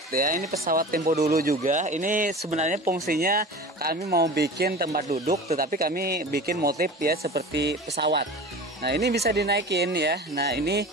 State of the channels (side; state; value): both; normal; correlation 0.35